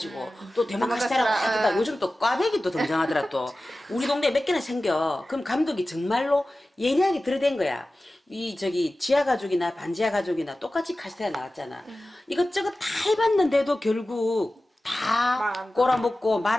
또 대만 카스테라 확 떴다. 요즘 또 꽈배기 또 등장하더라 또. 우리 동네에 몇 개나 생겨. 그럼 감독이 정말로 예리하게 들이댄 거야. 지하 가족이나 반지하 가족이나 똑같이 카스테라 나왔잖아. 이것저것 다 해봤는데도 결국 다 꼬라먹고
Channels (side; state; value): both; normal; correlation 0.96